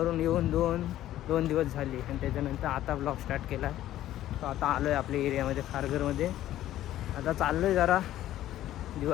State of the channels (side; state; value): right; quieter; 13.4 dB